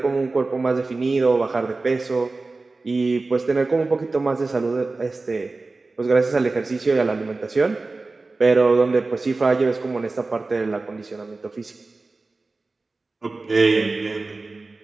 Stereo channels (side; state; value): left; quieter; 3.5 dB